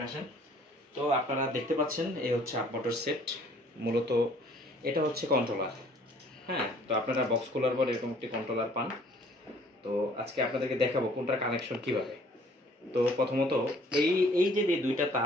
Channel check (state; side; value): normal; both; correlation 0.57